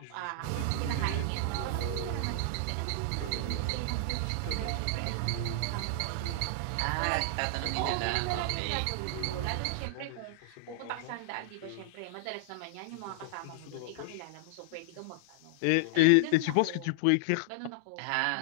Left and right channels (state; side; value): different; both; correlation -0.01